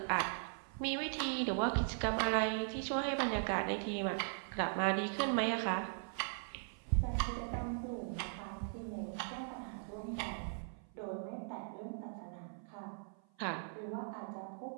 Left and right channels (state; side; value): silent; left; 52 dB below the other